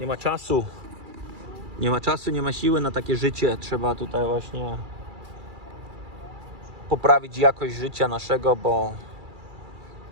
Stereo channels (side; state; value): left; late; 2.3 ms